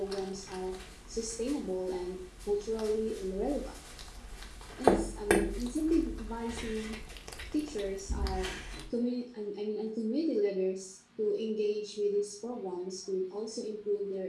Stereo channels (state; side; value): identical; both; correlation 1.00